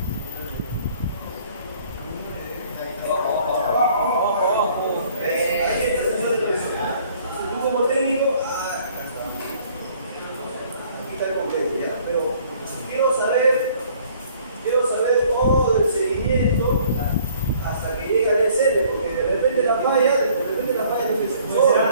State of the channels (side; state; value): both; inverted; correlation -0.58